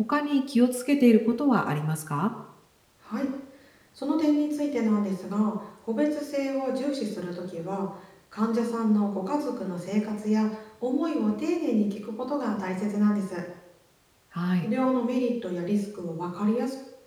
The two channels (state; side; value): identical; both; correlation 1.00